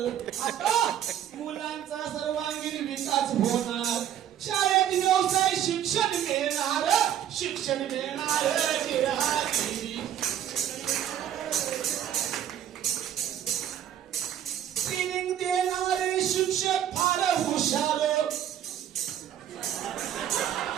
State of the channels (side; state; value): left; quieter; 10.5 dB